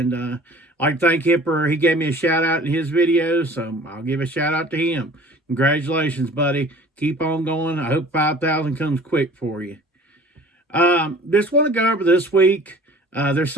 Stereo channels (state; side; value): normal; both; correlation 0.47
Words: I'd like to thank him for he gave me a shout out in his video, so I'll give a shout out to him. Congratulations, buddy. Keep on going. I hope 5,000 comes quick for you. Just want to go over this week. There's